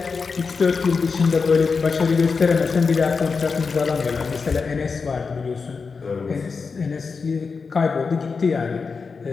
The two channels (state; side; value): quieter; right; 4.9 dB